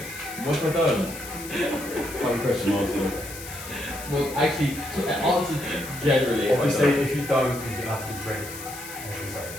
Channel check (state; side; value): noise; left; hiss, 12 dB below the sound